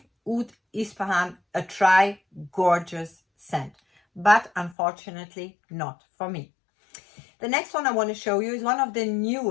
Oud Ispahan a try. Gorgeous scent, but unfortunately not for me. The next one I want to show you is one of the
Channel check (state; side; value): drops out; right; at 4.8 s